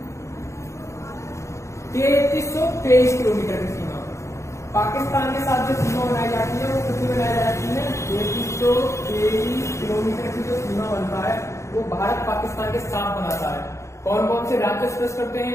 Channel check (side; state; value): right; late; 0.14 ms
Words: 3323 किलोमीटर की सीमा। पाकिस्तान के साथ जो सीमा बनाई जाती है वो कितनी बनाई जाती है, 3323 किलोमीटर की जो सीमा बनता है वो भारत पाकिस्तान के साथ बनाता है। कौन कौन से राज्य स्पर्श करते